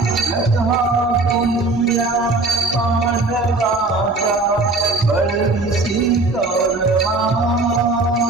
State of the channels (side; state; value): left; quieter; 3.3 dB